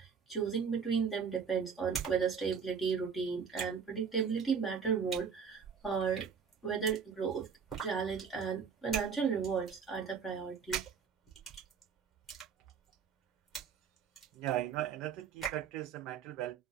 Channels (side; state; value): left; quieter; 6.4 dB